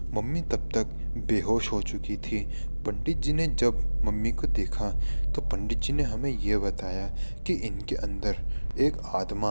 मम्मी तब तक बेहोश हो चुकी थी। पंडित जी ने जब मम्मी को देखा तो पंडित जी ने हमें ये बताया कि इनके अंदर एक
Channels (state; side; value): inverted; both; correlation -1.00